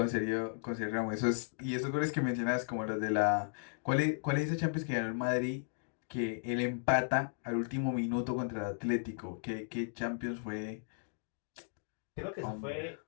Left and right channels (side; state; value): right; silent; digital silence